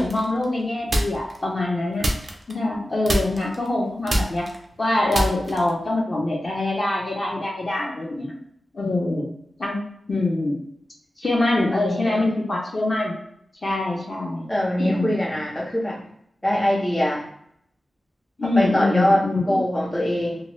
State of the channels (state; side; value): normal; both; correlation 0.94